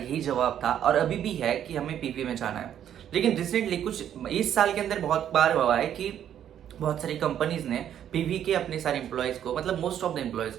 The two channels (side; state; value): left; quieter; 10.0 dB